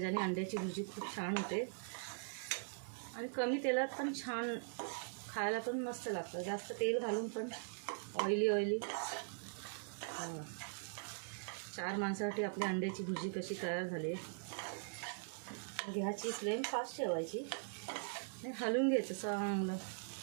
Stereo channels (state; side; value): silent; left; digital silence